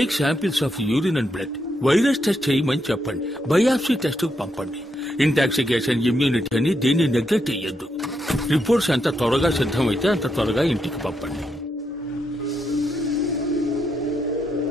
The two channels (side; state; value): both; normal; correlation 0.81